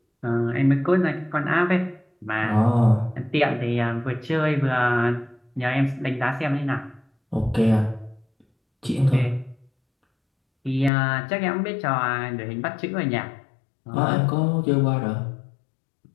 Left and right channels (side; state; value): right; drops out; at 10.9 s